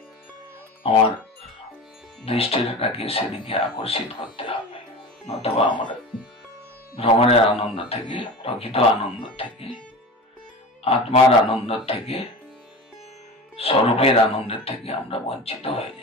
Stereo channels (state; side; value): normal; both; correlation 0.31